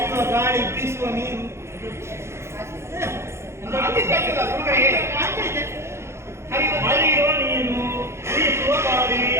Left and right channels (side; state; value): left; late; 0.13 ms